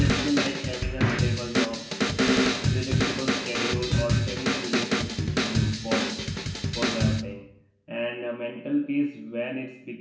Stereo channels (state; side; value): identical; both; correlation 1.00